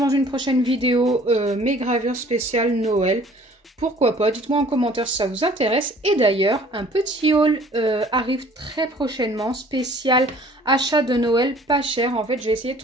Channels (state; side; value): normal; both; correlation 0.53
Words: une prochaine vidéo mes gravures spéciales Noël. Pourquoi pas, dites-moi en commentaire si ça vous intéresse. Et d'ailleurs, un petit haul arrive très prochainement, spécial achat de Noël pas cher. En fait, j'ai essayé de